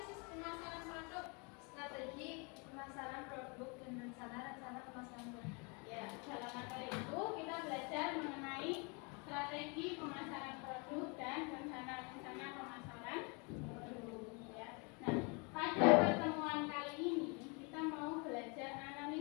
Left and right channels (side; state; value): right; quieter; 32.4 dB